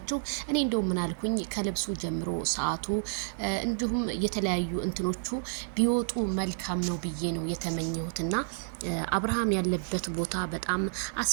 እኔ እንደው ምን አልኩኝ ከልብሱ ጀምሮ ሰዓቱ እንዲሁም የተለያዩ እንትኖቹ ቢወጡ መልካም ነው ብዬ ነው የተመኘሁትና አብርሃም ያለበት ቦታ በጣም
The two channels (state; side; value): silent; left; digital silence